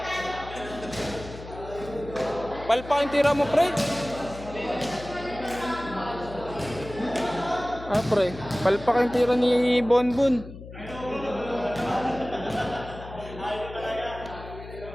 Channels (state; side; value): noise; left; hum, 14 dB below the sound